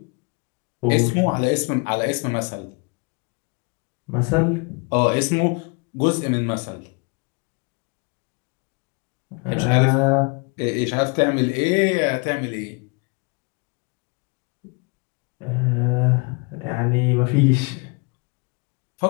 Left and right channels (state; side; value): quieter; right; 31.9 dB